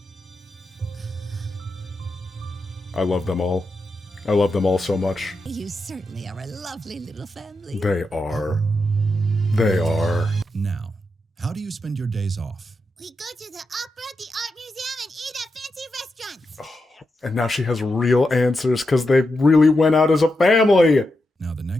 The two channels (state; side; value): normal; both; correlation 0.87